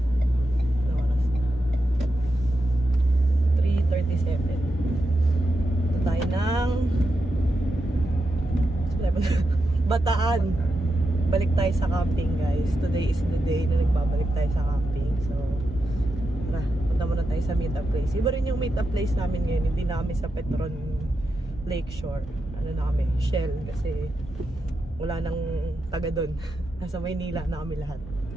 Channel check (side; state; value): both; normal; correlation 0.87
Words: Ano oras na? 3:37. Ito tayo ng Bataan. Balik tayo sa camping guys. Today is the day na nagbabalik tayo sa camping. So, tara, punta muna tayo sa meetup place. Iba rin yung meetup place namin ngayon. Hindi namin sa Petron Lakeshore. Ano na kami? Shell. Kasi wala nang taga doon. Nasa Maynila na kami lahat.